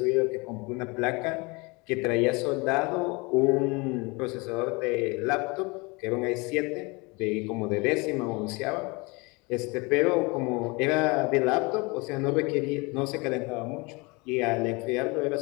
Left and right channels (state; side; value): quieter; right; 27.1 dB